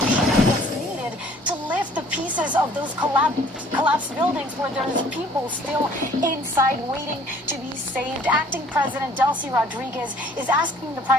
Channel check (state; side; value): normal; both; correlation 0.55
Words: machinery that's needed to lift the pieces of those collapsed buildings where there's people still inside waiting to be saved. Acting President Delcy Rodriguez is asking the